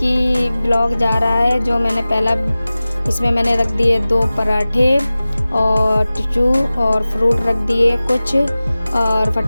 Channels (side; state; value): both; inverted; correlation -0.97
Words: ब्लॉग जा रहा है, जो मैंने पहला, इसमें मैंने रख दिए 2 पराठे और टिशू और फ्रूट रख दिए कुछ, और